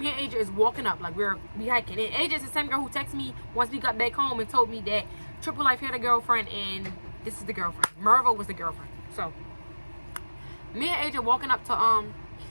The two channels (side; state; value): both; inverted; correlation -1.00